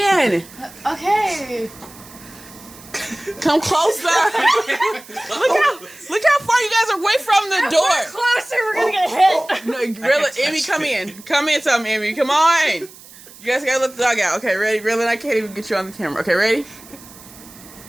Okay. Come closer. look how far you guys are away from the door. Closer, we're gonna get hit. No, Raylan, Emmy, come in. Come in, something, Emmy. Come on. You guys gotta let the dog out. Okay, ready? Raylan, I can't even get you on the camera. Okay, ready?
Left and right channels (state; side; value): noise; right; hiss, 20 dB below the sound